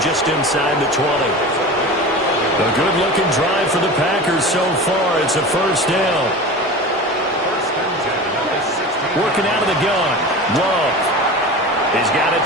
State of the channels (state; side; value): normal; both; correlation 0.32